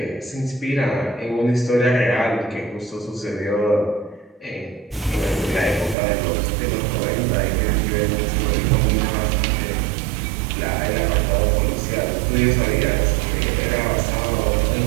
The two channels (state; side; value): drops out; left; at 6.0 s